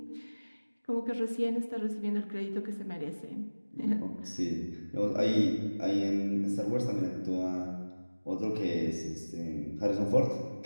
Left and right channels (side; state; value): both; inverted; correlation -1.00